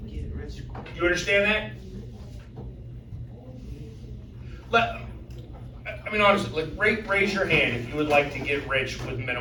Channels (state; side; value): identical; both; correlation 1.00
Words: Get rich quick. You understand that? I mean, honestly, like, raise your hand if you would like to get rich with